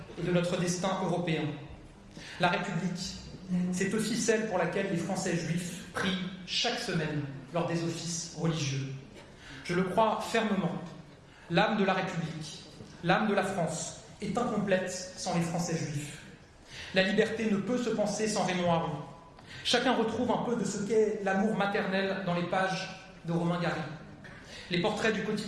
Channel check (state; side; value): identical; both; correlation 1.00